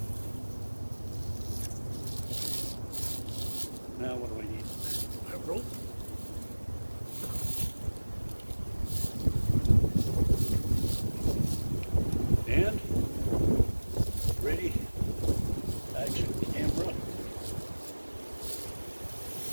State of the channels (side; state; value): both; inverted; correlation -1.00